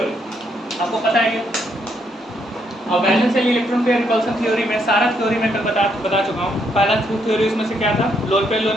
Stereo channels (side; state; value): both; normal; correlation 0.74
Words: आपको पता है ये। और valence shell electron pair repulsion theory में सारा थ्योरी मैं कल बता चुका हूँ। पहला थ्योरी उसमें से क्या था, lone pair